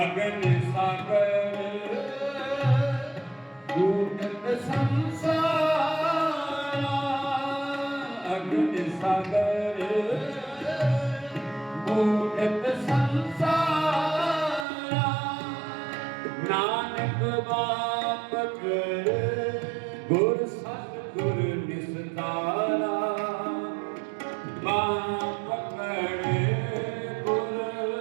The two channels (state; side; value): drops out; left; at 14.7 s